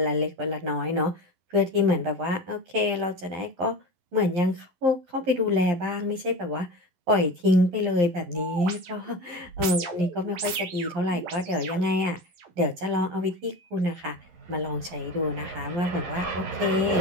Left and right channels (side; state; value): left; late; 11 ms